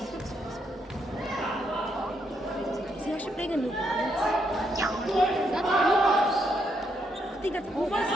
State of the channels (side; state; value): both; normal; correlation 0.77